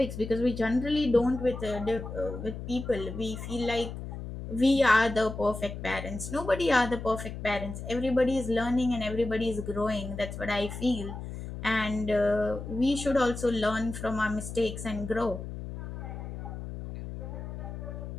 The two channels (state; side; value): noise; left; hum, 8 dB below the sound